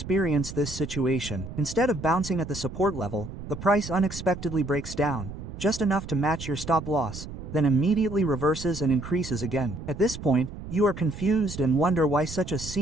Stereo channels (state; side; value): noise; right; rumble, 10 dB below the sound